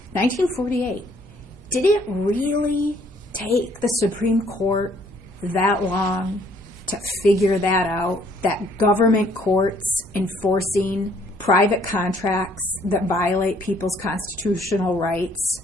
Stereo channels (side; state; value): both; normal; correlation 0.63